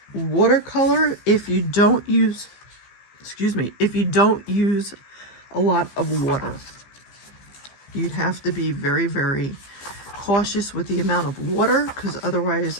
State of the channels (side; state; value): right; late; 15 ms